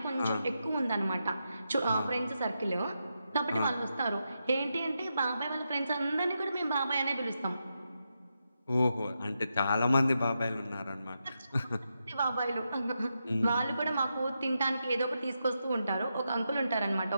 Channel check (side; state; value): both; inverted; correlation -0.85